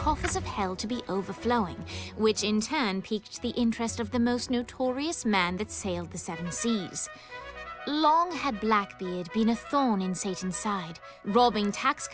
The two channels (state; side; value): identical; both; correlation 1.00